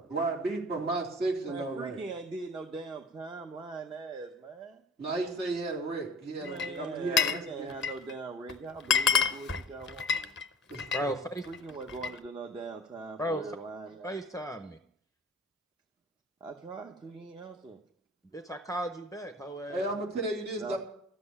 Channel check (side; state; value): both; normal; correlation 0.42